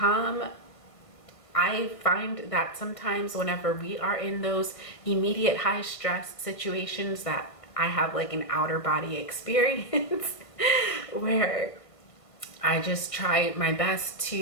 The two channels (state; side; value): late; right; 1.5 ms